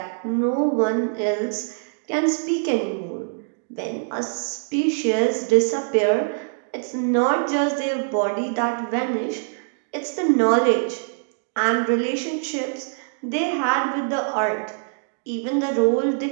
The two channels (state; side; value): silent; left; digital silence